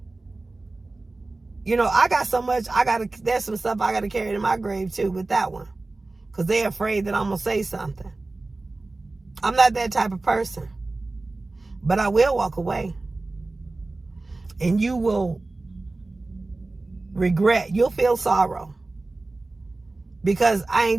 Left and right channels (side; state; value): left; quieter; 3.2 dB